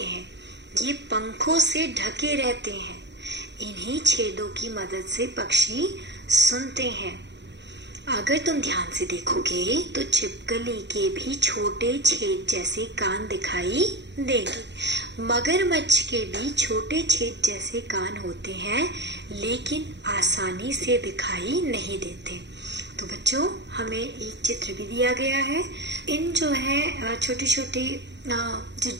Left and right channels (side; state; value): left; late; 0.51 ms